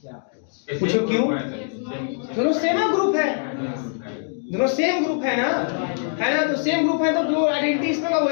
पूछो क्यों, दोनों सेम ग्रुप है, दोनों सेम ग्रुप है ना, तो सेम ग्रुप है तो जो आइडेंटिटी इसमें होगा वो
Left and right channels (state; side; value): silent; right; digital silence